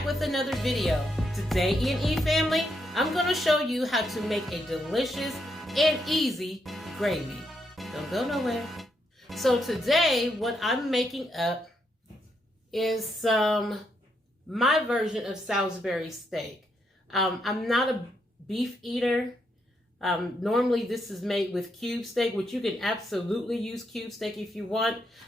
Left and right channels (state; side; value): normal; both; correlation 0.79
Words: with another video. Today, E&E family, I'm going to show you how to make a delicious and easy gravy. Don't go nowhere. So today, what I'm making up is my version of Salisbury steak. I'm not a beef eater. Normally this is made with cube steak, which you can absolutely use cube steak if you want,